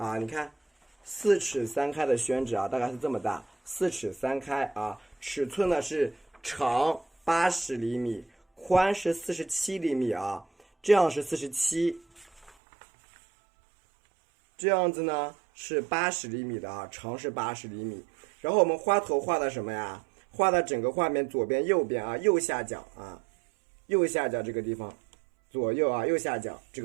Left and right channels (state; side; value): drops out; left; at 12.5 s